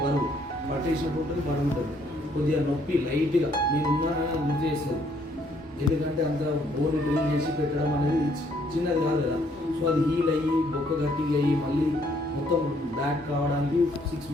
బరువు పట్టేసినట్టు ఉంటుంది, బరువు ఉంటుంది. కొద్దిగా నొప్పి లైట్గా నేను ఉన్నానని గుర్తు చేస్తుంది. ఎందుకంటే అంత బోన్ డ్రిల్ చేసి పెట్టడం అనేది చిన్నది కాదు కదా. సో అది హీల్ అయ్యి బొక్క గట్టిగా అయ్యి మళ్ళీ మొత్తం బ్యాక్ కావడానికి 6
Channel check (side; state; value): both; normal; correlation 0.67